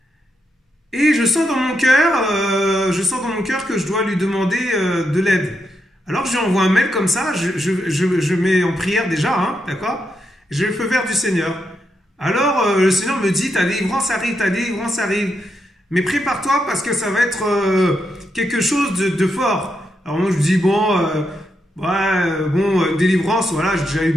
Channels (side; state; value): both; normal; correlation 0.83